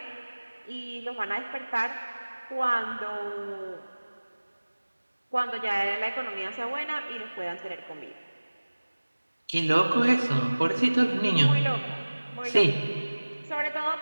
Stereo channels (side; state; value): both; inverted; correlation -1.00